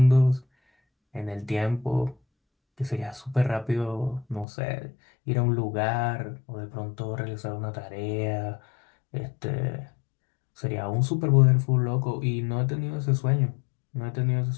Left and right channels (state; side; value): drops out; right; at 4.5 s